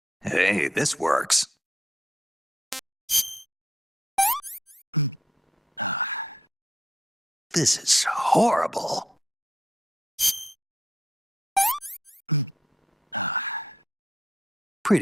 Hey, this works. This is horrible.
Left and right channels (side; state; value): both; normal; correlation 0.76